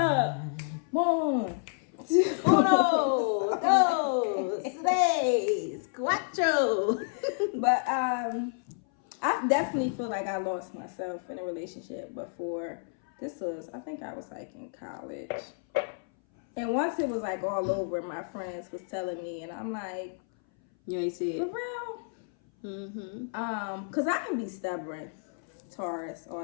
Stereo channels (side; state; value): right; silent; 58 dB below the other